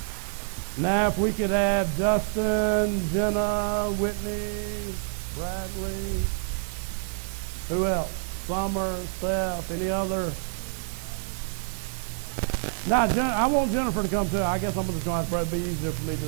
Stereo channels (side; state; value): left; silent; 58 dB below the other